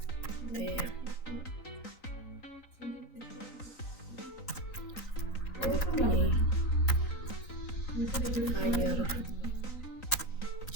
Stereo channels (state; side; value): late; right; 3.9 ms